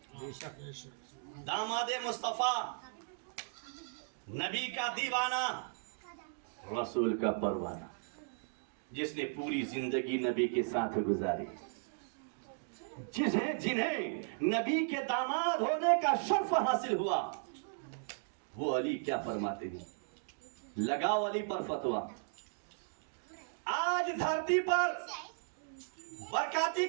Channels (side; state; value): left; silent; digital silence